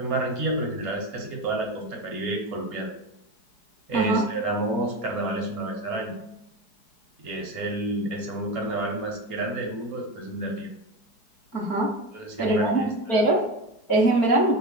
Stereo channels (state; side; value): late; right; 4.7 ms